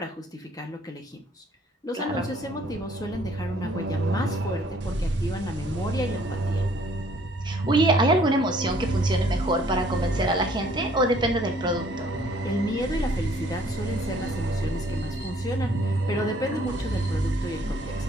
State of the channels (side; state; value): both; normal; correlation 0.60